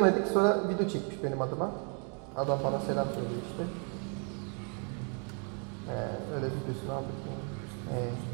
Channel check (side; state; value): left; quieter; 39.5 dB